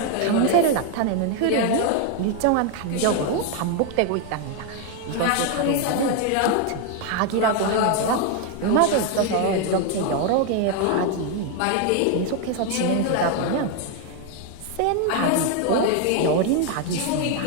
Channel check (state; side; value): different; both; correlation 0.01